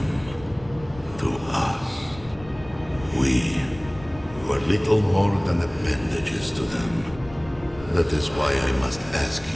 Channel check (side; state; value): left; noise; rumble, 18 dB below the sound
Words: to us. We were little more than appendages to them. That is why I must ask